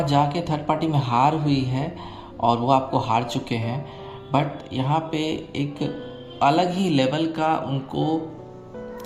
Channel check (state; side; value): identical; both; correlation 1.00